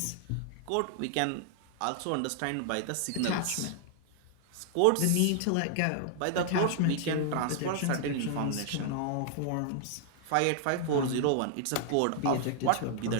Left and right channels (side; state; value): both; different; correlation 0.00